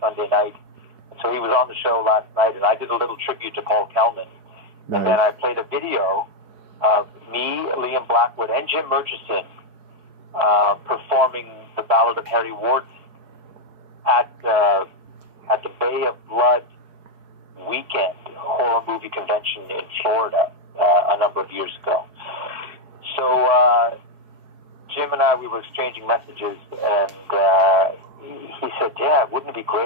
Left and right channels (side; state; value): left; late; 4.7 ms